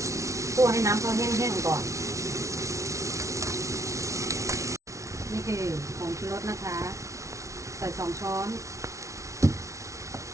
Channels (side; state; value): left; late; 0.14 ms